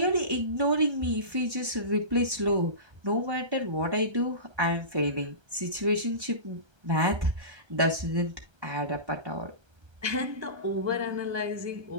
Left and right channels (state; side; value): late; left; 1.3 ms